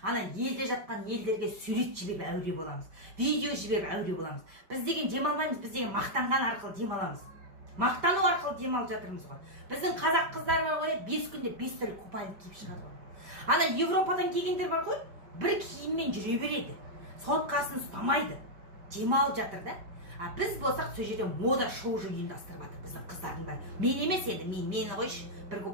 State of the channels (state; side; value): late; left; 5.1 ms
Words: елде жатқан елдерге сурет жіберіп әуре боламыз. Видео жіберіп әуре боламыз. Біз деген демалмаймыз, біз деген мақтанған арқылы демаламыз. Мақтану арқылы демалып жатырмыз ғой. Біздің қазақ қыздар бар ғой, 5 күнде 5 түрлі купальник киіп шығады ғой. Ана Европадан келгендер бар ғой, бір киіммен жүре береді. Соткасын ұстамайды. Демалып жатыр да. А біз болсақ сол жерде мода шоу ұйымдастырып жатыр біздің қыздардың бәрі. Мен емес енді, мені қойшы, бір